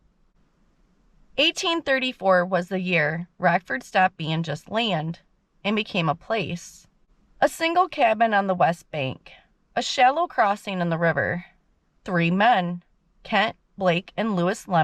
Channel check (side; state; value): both; identical; correlation 1.00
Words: 1834 was the year Rockford stopped being just land and became a place. A single cabin on the west bank, a shallow crossing in the river, 3 men, Kent, Blake, and Lewis